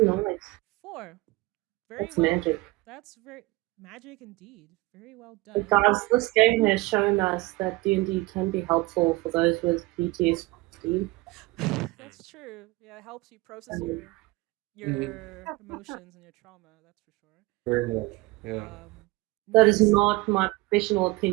nice. 4. Very That's well. magic. That's very magic indeed. Very well done. Guys, this game has shown us that D&D can be helpful for those with PTSD. That's true. Yeah, it helps you process Um, your emotions and your trauma. That's for sure. Very much. Yeah. That is Next, not my professional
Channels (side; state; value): left; quieter; 22.0 dB